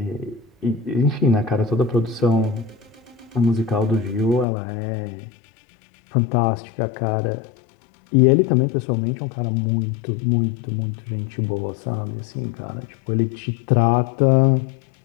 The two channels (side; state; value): right; drops out; at 4.5 s